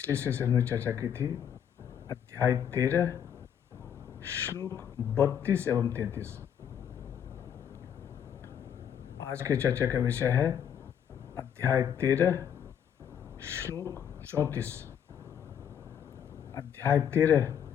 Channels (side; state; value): right; quieter; 8.8 dB